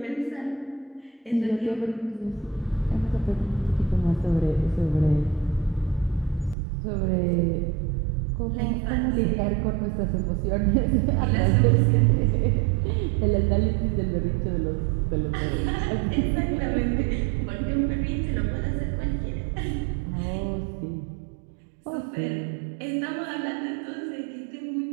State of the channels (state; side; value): drops out; left; at 6.6 s